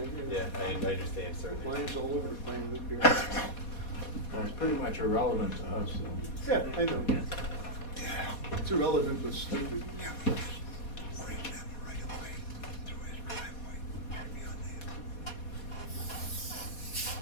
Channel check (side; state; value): right; late; 4.2 ms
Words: you know. Yeah, I understand certainly. Lines all over the plan, look here. Well, it's pretty much irrelevant to us, so. Yeah, I know. It's irrelevant but stupid.